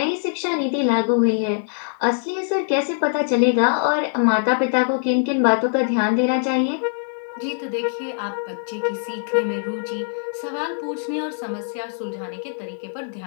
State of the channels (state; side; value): silent; right; digital silence